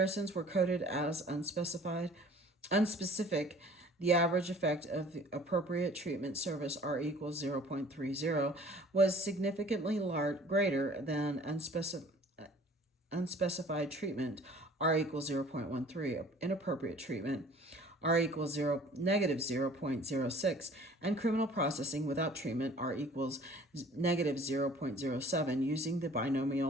were coded as unspecific. The average effect of the appropriate treatment service, R equals 0.30, was significantly greater than unspecified treatment, R equals 0.13, inappropriate treatment, R equals negative 0.06, and criminal processing without treatment, R equals negative 0.07, using the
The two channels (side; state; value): both; normal; correlation 0.51